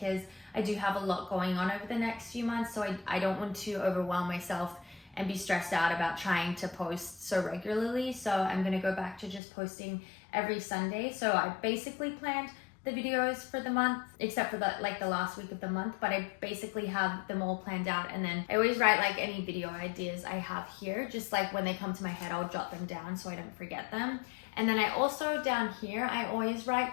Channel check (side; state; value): right; drops out; at 9.4 s